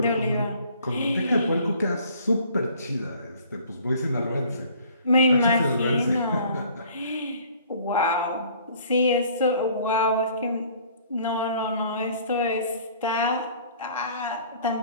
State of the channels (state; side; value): inverted; both; correlation -0.54